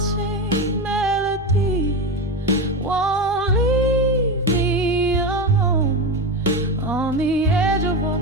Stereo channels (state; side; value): normal; both; correlation 0.19